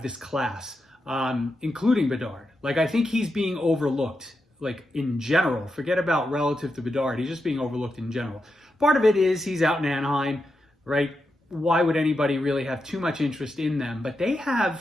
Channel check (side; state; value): both; normal; correlation 0.87